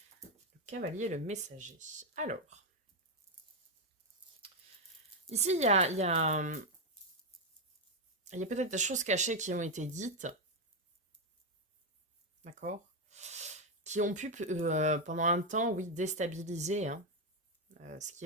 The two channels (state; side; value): normal; both; correlation 0.04